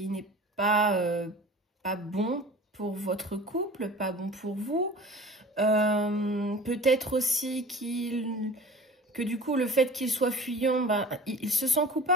n'est pas bon pour votre couple, pas bon pour vous. Peut-être aussi que du coup, le fait qu'il soit fuyant, il se sent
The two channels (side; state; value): both; normal; correlation 0.40